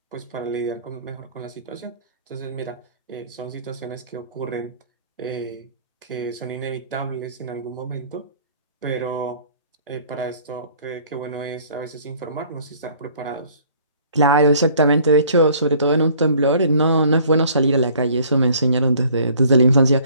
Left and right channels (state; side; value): inverted; both; correlation -0.55